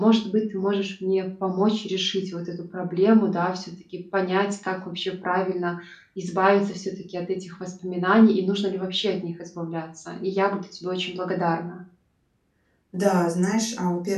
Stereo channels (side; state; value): both; identical; correlation 1.00